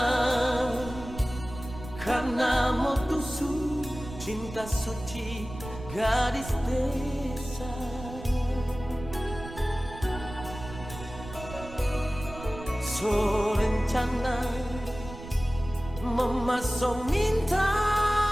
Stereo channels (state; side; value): noise; right; rumble, 12 dB below the sound